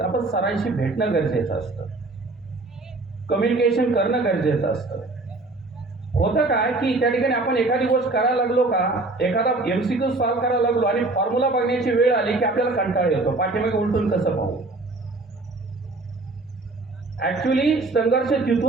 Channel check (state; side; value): quieter; left; 3.2 dB